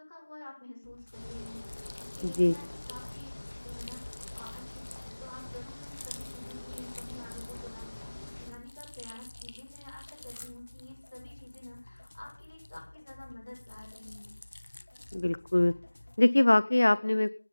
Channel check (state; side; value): inverted; both; correlation -1.00